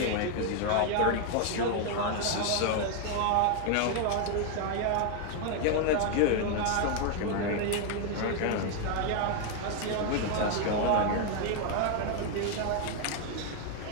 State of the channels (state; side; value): different; both; correlation 0.00